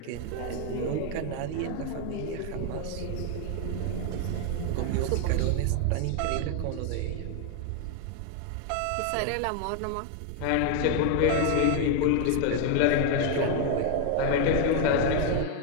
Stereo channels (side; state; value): both; different; correlation 0.00